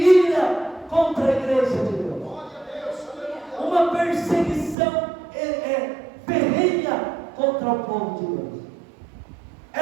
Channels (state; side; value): drops out; left; at 4.8 s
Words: contra a igreja de Deus. Uma perseguição ferrenha contra o povo de Deus.